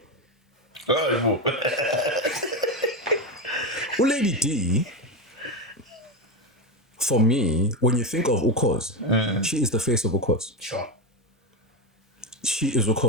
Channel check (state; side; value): normal; both; correlation 0.14